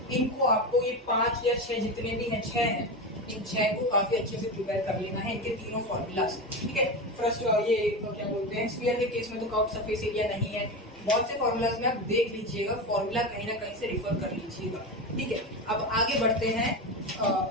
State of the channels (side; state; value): both; normal; correlation 0.20